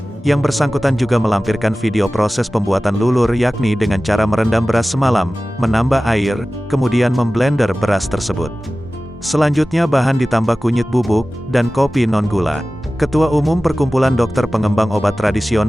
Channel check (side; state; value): both; normal; correlation 0.96